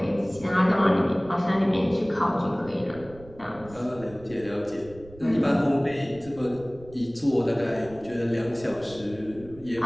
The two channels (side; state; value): right; noise; rumble, 20 dB below the sound